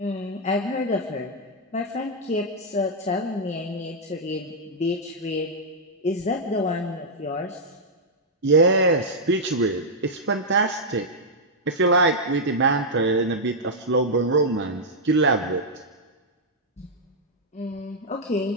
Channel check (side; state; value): both; normal; correlation -0.06